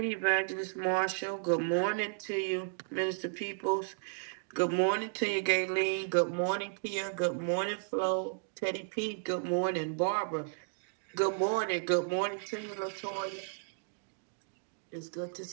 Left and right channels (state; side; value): silent; left; digital silence